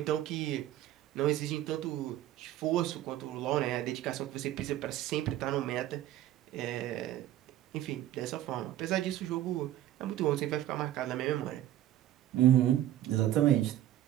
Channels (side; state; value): left; quieter; 13.0 dB